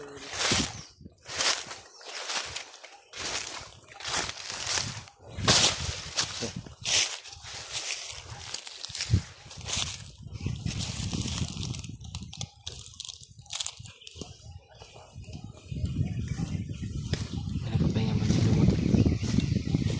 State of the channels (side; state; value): both; identical; correlation 1.00